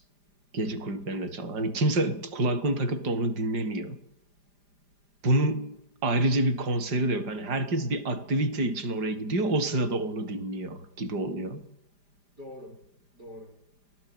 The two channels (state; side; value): late; left; 5.0 ms